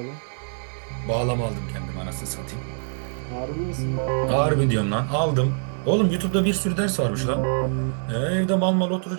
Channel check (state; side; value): silent; left; digital silence